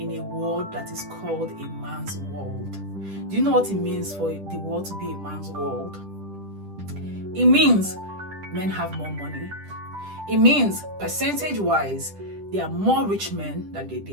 a world that is called a man's world. Do you know what it means for the world to be a man's world? It means men have more money. It means percentage-wise, there are more rich men than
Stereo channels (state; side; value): late; left; 10 ms